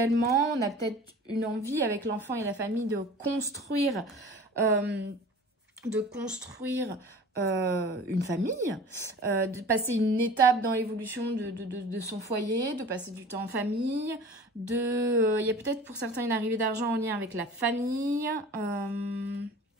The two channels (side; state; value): both; normal; correlation 0.41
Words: On a peut-être une envie avec l'enfant et la famille de construire une famille, de passer une étape dans l'évolution de son foyer, de passer du temps en famille, il y a peut-être pour certains une arrivée d'argent en lien avec la famille.